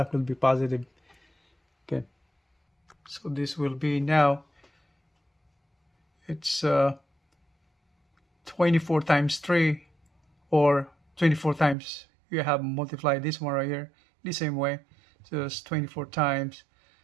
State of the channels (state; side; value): drops out; left; at 11.8 s